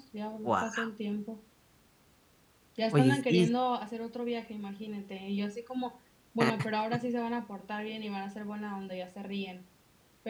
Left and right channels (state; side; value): identical; both; correlation 1.00